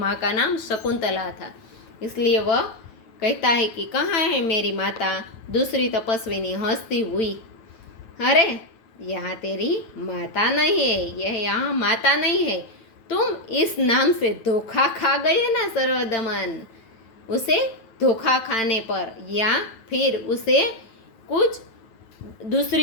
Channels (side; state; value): right; late; 9.3 ms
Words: का नाम शकुंतला था, इसलिए वह कहता है कि कहाँ है मेरी माता। दूसरी तपस्विनी हंसती हुई, अरे यहाँ तेरी माता नहीं है, यह यहाँ माता नहीं है, तुम इस नाम से धोखा खा गए ना सर्वदमन। उसे धोखा खाने पर या फिर उसे कुछ